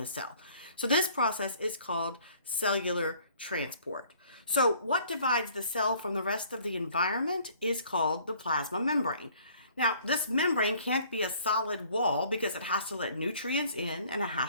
cell. So this process is called cellular transport. So what divides the cell from the rest of the environment is called the plasma membrane. Now, this membrane can't be a solid wall because it has to let nutrients in and it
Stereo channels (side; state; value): both; inverted; correlation -0.57